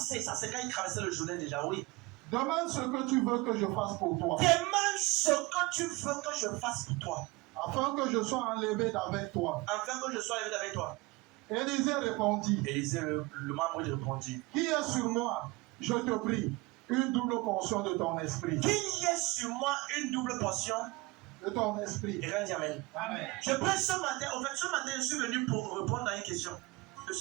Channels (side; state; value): left; quieter; 23.2 dB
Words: ça c'est quand il traversait le Jourdain déjà, oui. Demande ce que tu veux que je fasse pour toi. Demande ce que tu veux que je fasse pour toi. Afin que je sois enlevé d'avec toi. Afin que je sois enlevé d'avec toi. Élisée répondit. Élisée, le membre, il répondit. Qui est sur moi, je te prie, une double portion de ton esprit. Qui est sur moi une double portion de ton esprit. Et quand dit amen. Amen. Je prie ce matin, en fait, ce matin, je suis venu pour répondre à une question. Je